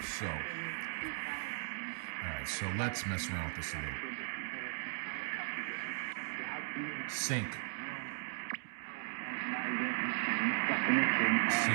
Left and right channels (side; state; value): left; silent; digital silence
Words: So, all right, so let's mess around with this a little. Sync. See,